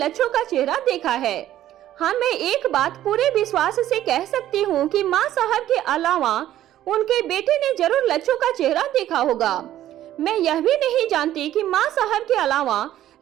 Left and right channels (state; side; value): quieter; left; 12.8 dB